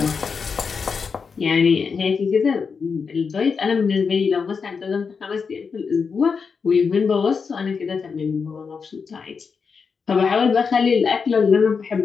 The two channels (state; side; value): quieter; right; 5.5 dB